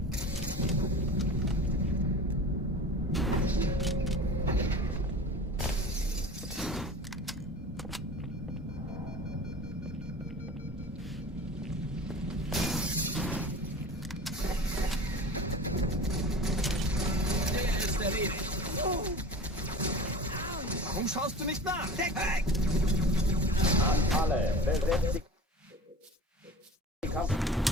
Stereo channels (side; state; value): both; normal; correlation 0.36